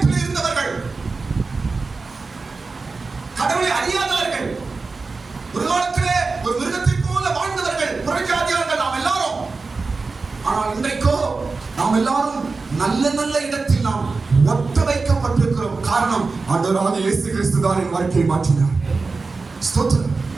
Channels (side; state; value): left; quieter; 4.1 dB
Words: அறியாதவர்கள், ஒரு காலத்திலே ஒரு மிருகத்தை போல வாழ்ந்தவர்கள், புறஜாதியார்கள் நாம் எல்லாரும். ஆனால் இன்றைக்கோ நாம் எல்லாரும் நல்ல நல்ல இடத்தில் நாம் ஒட்ட வைக்கப்பட்டிருக்கிறோம். காரணம், ஆண்டவராகிய இயேசு கிறிஸ்து தான் என் வாழ்க்கையை மாற்றினார். ஸ்தோத்திரம்.